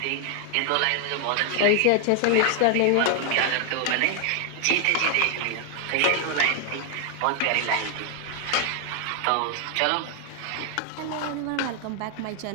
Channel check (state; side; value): different; both; correlation 0.00